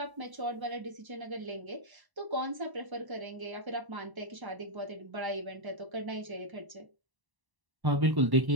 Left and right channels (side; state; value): left; late; 1.0 ms